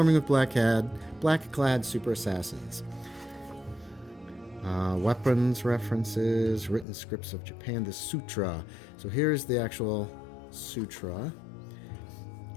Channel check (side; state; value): right; drops out; at 6.9 s